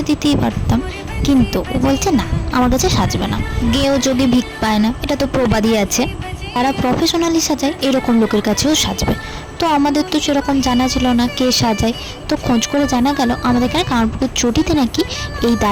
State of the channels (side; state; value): both; identical; correlation 1.00